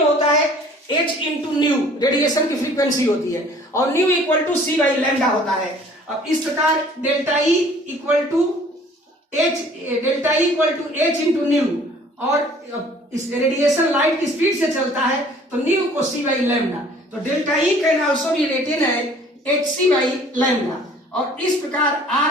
होता है h इंटू न्यू, रेडिएशन की फ्रीक्वेंसी होती है, और न्यू इक्वल टू c/λ होता है। अब इस प्रकार delta E equal to h into nu, और इस रेडिएशन लाइट की स्पीड से चलता है तो न्यू को c/λ, तो delta E can also be written as hc/λ। और इस प्रकार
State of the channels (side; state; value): both; normal; correlation 0.53